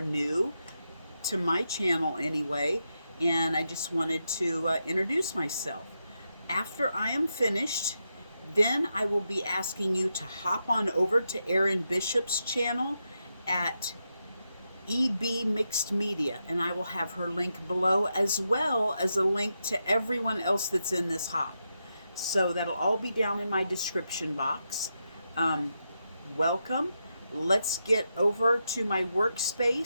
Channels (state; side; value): inverted; both; correlation -0.85